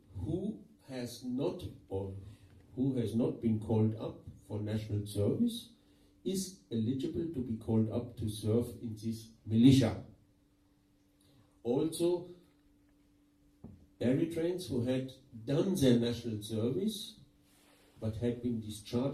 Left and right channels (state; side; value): identical; both; correlation 1.00